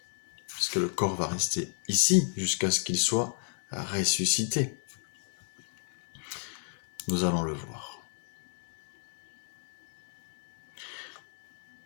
Puisque le corps va rester ici, jusqu'à ce qu'il soit ressuscité. Nous allons le voir.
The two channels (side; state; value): right; silent; 56 dB below the other